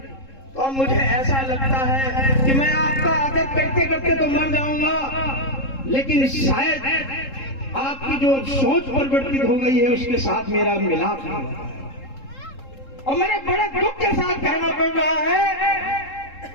तो अब मुझे ऐसा लगता है कि मैं आपका आदर करते करते तो मर जाऊंगा, लेकिन शायद आपकी जो सोच परिवर्तित हो गई है उसके साथ मेरा मिलाप नहीं होता। और मेरे बड़े दुख के साथ कहना पड़ रहा है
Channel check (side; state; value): right; late; 3.7 ms